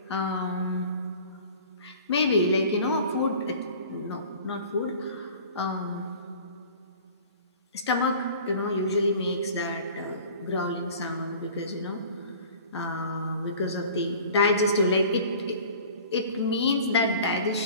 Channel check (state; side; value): inverted; both; correlation -0.44